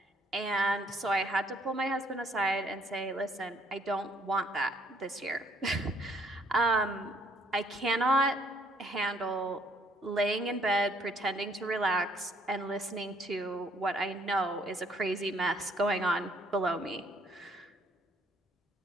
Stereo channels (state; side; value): normal; both; correlation 0.65